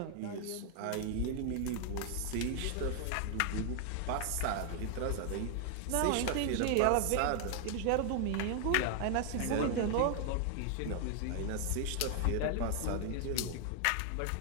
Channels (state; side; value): different; both; correlation 0.00